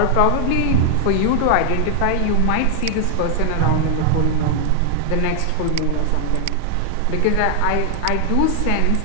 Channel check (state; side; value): different; both; correlation 0.00